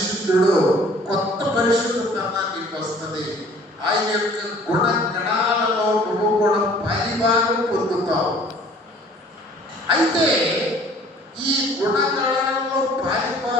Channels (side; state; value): both; normal; correlation 0.52